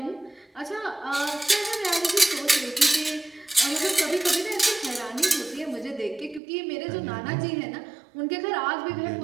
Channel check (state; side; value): drops out; left; at 6.4 s